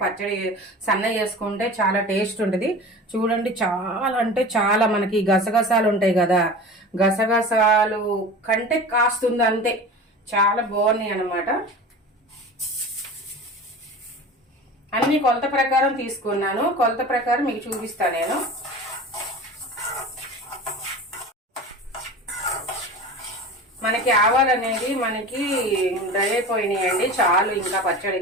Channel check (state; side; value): normal; both; correlation 0.35